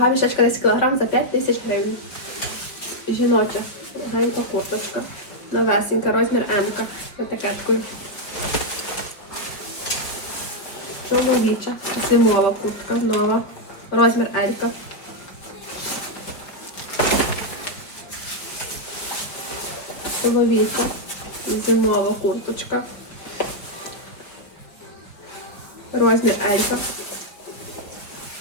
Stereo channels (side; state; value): right; late; 4.9 ms